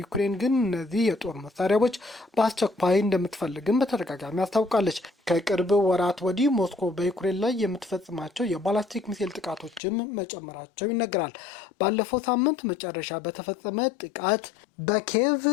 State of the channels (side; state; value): right; drops out; at 9.8 s